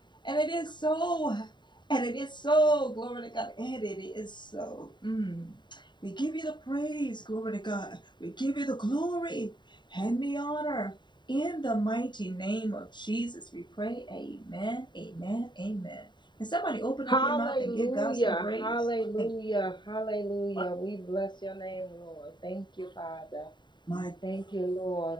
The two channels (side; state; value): right; late; 0.22 ms